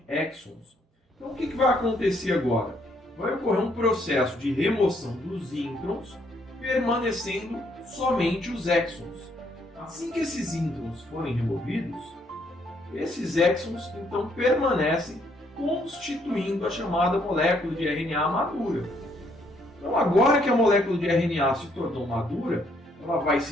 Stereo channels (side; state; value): both; normal; correlation 0.70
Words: exons. Então o que vai acontecer agora? Vai ocorrer um processo de remoção dos introns, permanecendo somente os exons. Assim que esses introns forem removidos, esses exons então permanecem constituindo a chamada molécula de RNA madura. Então agora que a molécula de RNA se tornou madura, ela vai